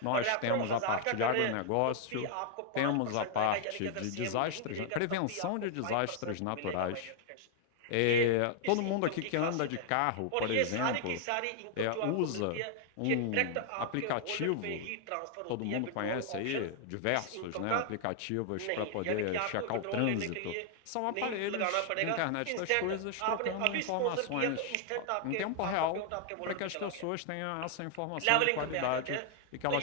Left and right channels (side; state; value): both; different; correlation 0.00